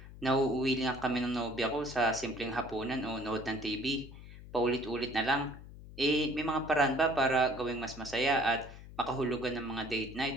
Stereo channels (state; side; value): noise; left; hum, 16 dB below the sound